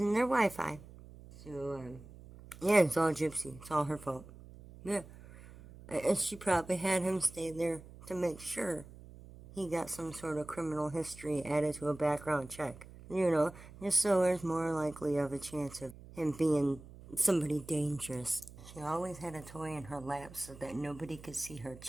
their Wi-Fi. So, yeah, it's all Gypsy. It's all her fault. Yeah. And she probably had him stay there to make sure he got some sort of criminal history added to a background check. Just so there's more likely of a chance of him being somebody dangerous. She always had a toy in her lap so that nobody could see her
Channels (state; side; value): noise; right; hum, 18 dB below the sound